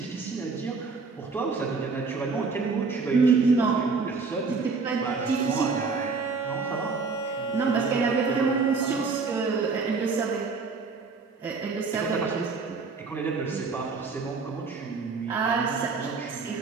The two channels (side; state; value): left; quieter; 4.5 dB